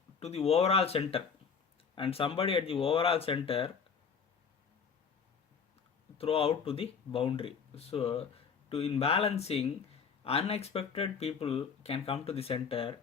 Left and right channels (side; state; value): right; quieter; 6.2 dB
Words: to the overall center, and somebody at the overall center throw out to the boundary. So in balancing, unexpected people can come to the center,